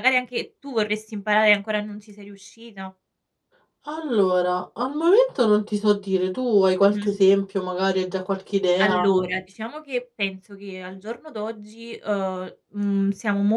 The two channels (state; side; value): identical; both; correlation 1.00